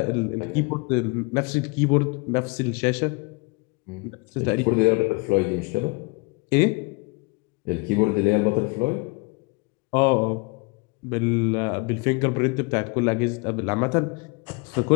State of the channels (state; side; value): quieter; right; 28.7 dB